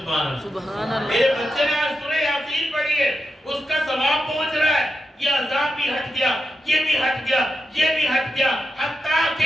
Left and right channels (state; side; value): normal; both; correlation 0.87